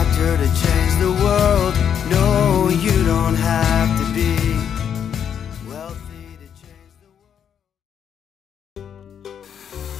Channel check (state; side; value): quieter; right; 8.4 dB